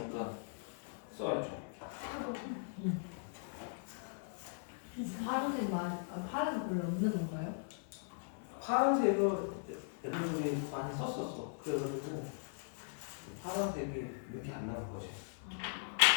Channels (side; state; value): right; silent; 52 dB below the other